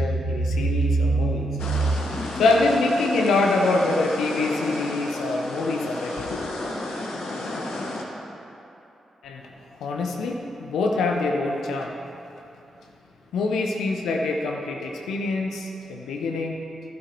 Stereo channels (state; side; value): normal; both; correlation 0.78